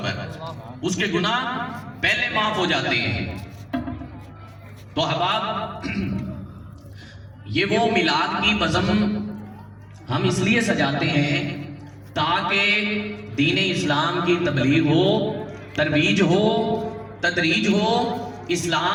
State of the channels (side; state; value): both; identical; correlation 1.00